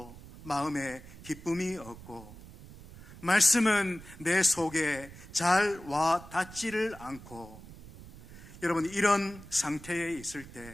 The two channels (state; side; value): noise; right; rumble, 17 dB below the sound